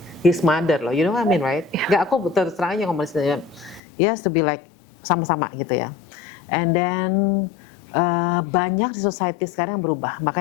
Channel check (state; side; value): drops out; right; at 3.8 s